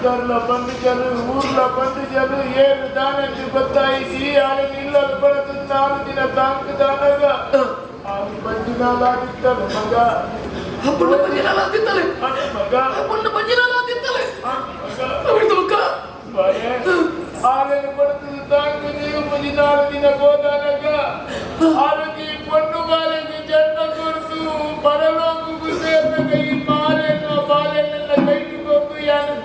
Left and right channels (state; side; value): identical; both; correlation 1.00